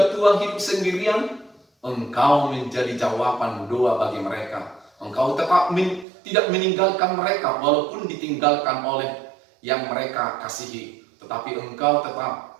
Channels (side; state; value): left; drops out; at 6.1 s